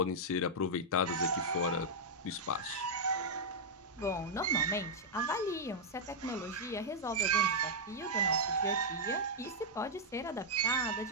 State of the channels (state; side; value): normal; both; correlation -0.06